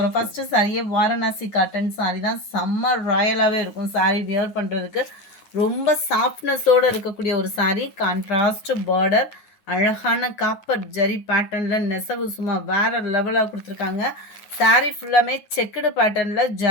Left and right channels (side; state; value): right; late; 9.5 ms